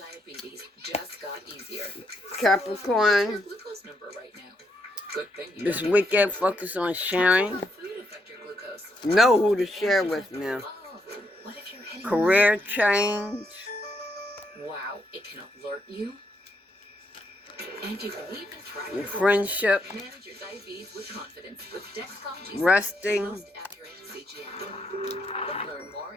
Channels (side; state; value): both; normal; correlation 0.77